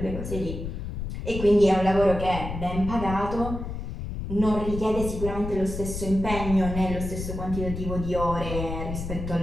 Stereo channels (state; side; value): noise; left; rumble, 6 dB below the sound